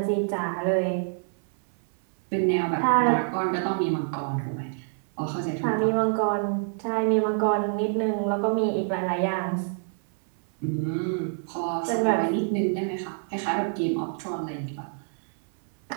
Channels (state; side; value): silent; left; 60 dB below the other